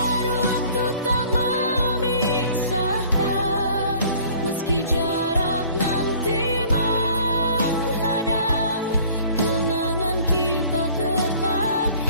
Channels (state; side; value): inverted; both; correlation -0.52